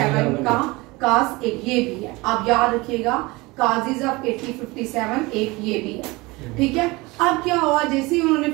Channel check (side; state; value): left; quieter; 23.0 dB